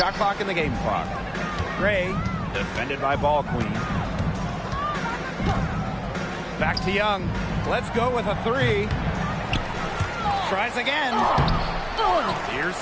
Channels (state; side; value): identical; both; correlation 1.00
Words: clock and the game clock. Gray, defended by ball queen. Back to Young. Let's go with a three. Tries again. Here's